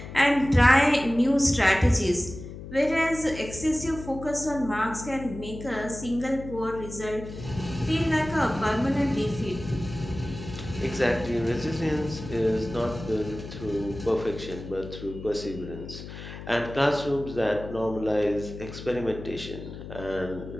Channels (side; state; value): left; noise; hum, 12 dB below the sound